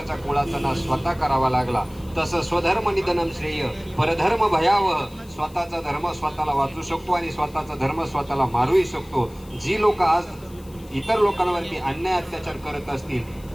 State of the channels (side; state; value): left; noise; hiss, 25 dB below the sound